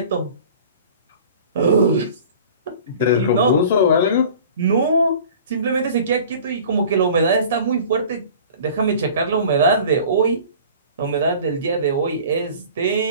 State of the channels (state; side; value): inverted; both; correlation -0.44